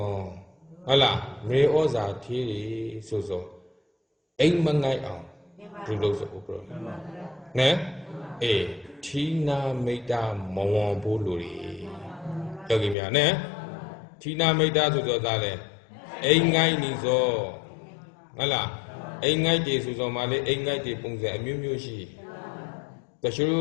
hả la? Me oza thi so so, anh mang ngay ao, tu lo so bro, nè, Thina Meta Mawon Boluri. Yogi Mia, ne? Thina Meta to the Dale. Engai Nizo. Ala. Engai de Suzomale, Engai de Punza, Mumushi. The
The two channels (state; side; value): drops out; right; at 13.0 s